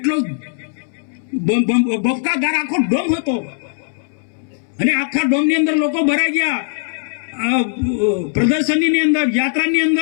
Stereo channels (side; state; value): right; silent; 65 dB below the other